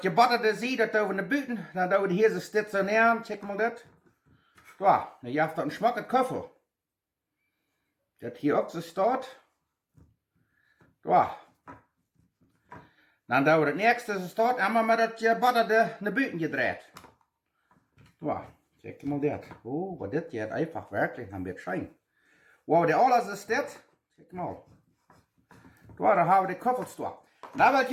gebutterte Seed, das tun wir in die Büten. Dann tun wir hier so stationieren. Check mal das. So, dann habt ihr einen schmacken Köffel. Das hier auch so steht. So. Dann tun wir das nächste, das steht, einmal mit das gebutterte in die Büten gedreht. So, check mal das. Oh, was das jetzt einfach wirklich ein bisschen schein. Wow, der alles ist das. Check mal. Da haben wir die Köffelstor. Da will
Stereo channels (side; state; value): both; identical; correlation 1.00